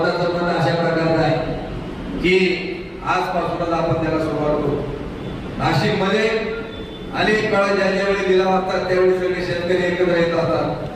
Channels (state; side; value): identical; both; correlation 1.00